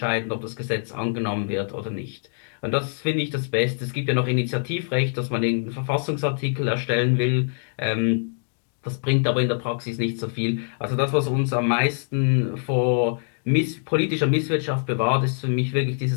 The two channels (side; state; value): right; silent; digital silence